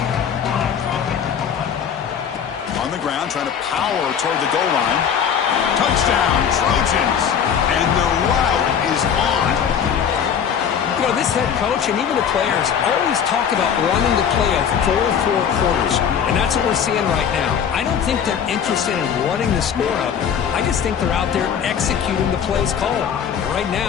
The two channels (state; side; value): quieter; right; 7.9 dB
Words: On the ground, trying to power toward the goal line. Touchdown, Trojans. And the route is on. You know, this head coach and even the players always talk about wanting to play a full 4 quarters. And that's what we're seeing right now. I don't think they're interested in running the score up. I just think they're out there executing the plays called. And right